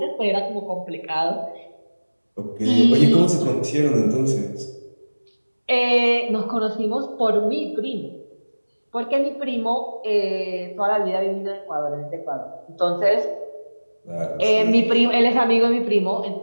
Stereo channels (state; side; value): inverted; both; correlation -1.00